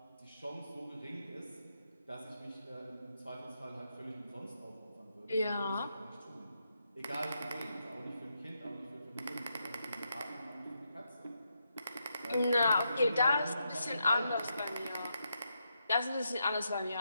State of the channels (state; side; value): inverted; both; correlation -0.82